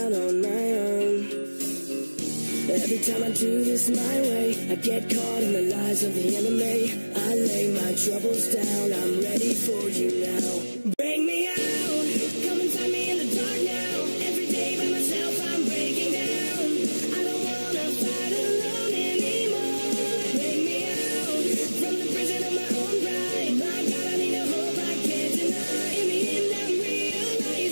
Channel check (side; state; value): both; inverted; correlation -1.00